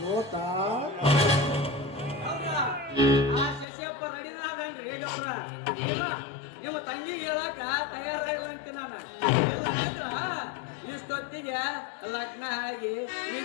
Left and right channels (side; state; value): right; drops out; at 3.7 s